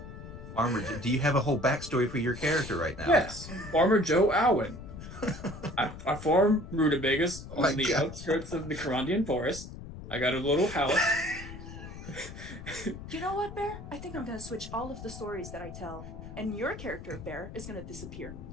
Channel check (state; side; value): noise; left; rumble, 12 dB below the sound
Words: Farmer, do you have a whole backstory for your character right now? Yes. Farmer Joe Alwyn. I farm rutabagas Oh my on the God. outskirts of the Carandian forest. I got a little house. You know what, Bear? I think I'm gonna switch all of the stories that I tell, and your character, Bear, is gonna disappear.